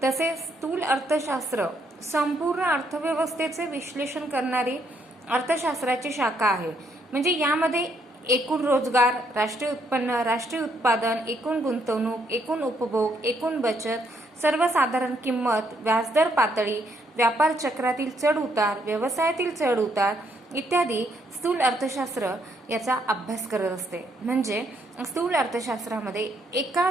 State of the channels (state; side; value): normal; both; correlation 0.72